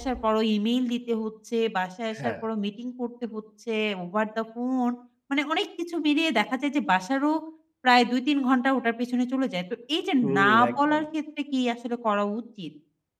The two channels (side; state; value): both; identical; correlation 1.00